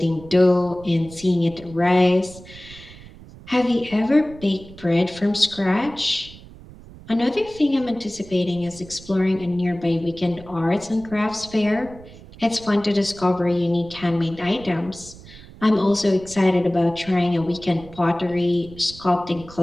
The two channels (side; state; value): right; noise; rumble, 19 dB below the sound